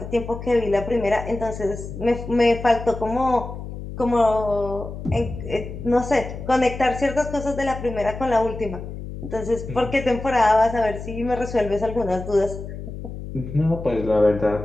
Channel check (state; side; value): noise; left; hum, 9 dB below the sound